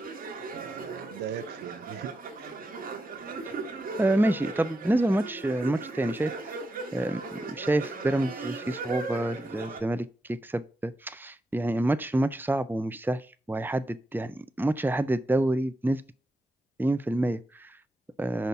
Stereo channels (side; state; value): both; normal; correlation 0.87